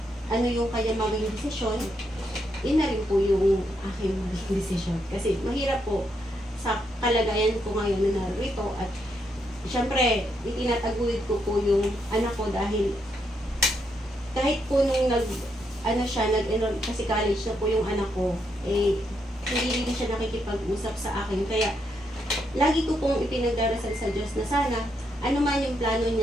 ano yung kanya maging desisyon, yun na rin po yung aking maging desisyon. Kasi mahirap po sa kalagayan ko ngayon na narito at syempre, itinataguyod ko po yung anak ko dahil kahit po nung nag-enroll kasi college na po yung anak ko, eh, hindi rin siya nakikipag-usap sa akin. Kaya, lagi ko pong ipinagdarasal sa Diyos na sana, ano man yung plano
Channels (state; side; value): normal; both; correlation 0.79